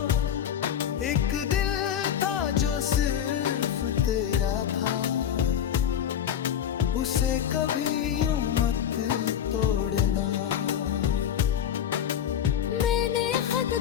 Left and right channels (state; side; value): quieter; right; 9.4 dB